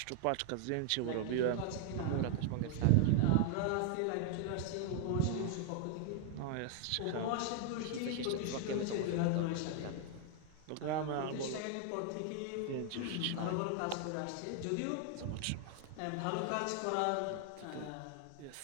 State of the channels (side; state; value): both; different; correlation 0.00